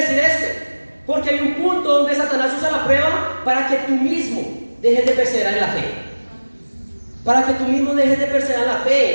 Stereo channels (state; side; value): inverted; both; correlation -1.00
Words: decir esto? Porque hay un punto donde Satanás usa la prueba para que tú mismo dejes de perseverar en la fe. Para que tú mismo dejes de perseverar en la